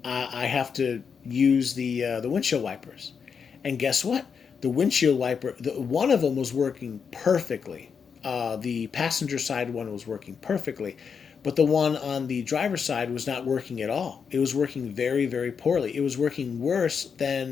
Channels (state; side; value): quieter; right; 6.3 dB